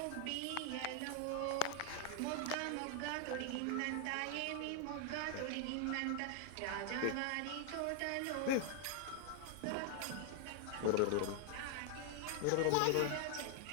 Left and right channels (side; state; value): both; different; correlation 0.00